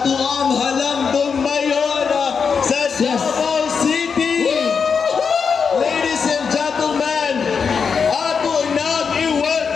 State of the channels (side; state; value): right; quieter; 5.9 dB